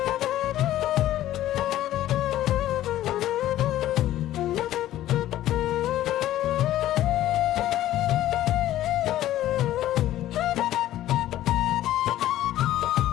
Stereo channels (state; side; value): quieter; right; 13.7 dB